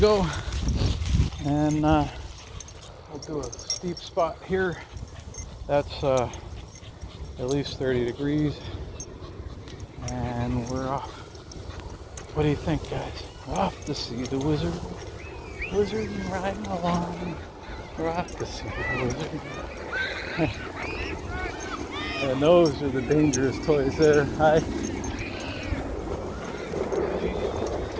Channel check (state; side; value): identical; both; correlation 1.00